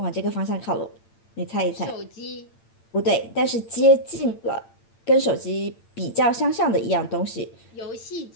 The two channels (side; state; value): right; late; 8.9 ms